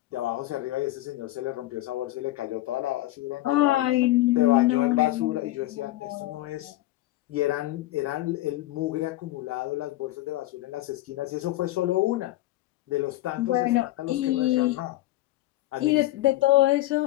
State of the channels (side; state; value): right; quieter; 16.6 dB